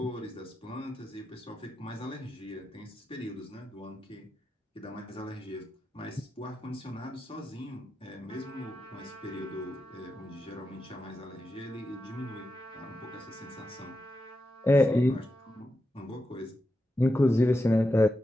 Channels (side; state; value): both; normal; correlation 0.88